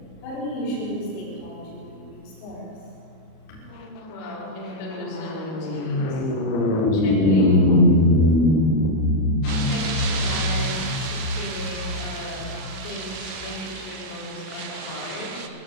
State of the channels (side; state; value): right; late; 37 ms